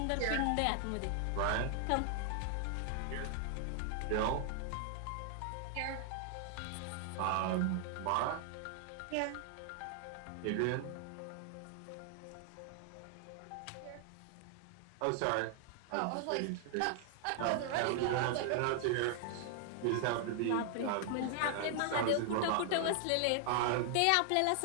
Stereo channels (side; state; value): both; different; correlation 0.00